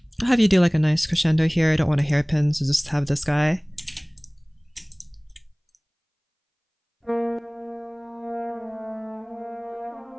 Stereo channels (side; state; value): both; identical; correlation 1.00